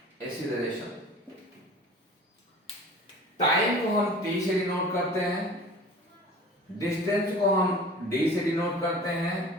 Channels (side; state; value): both; normal; correlation 0.42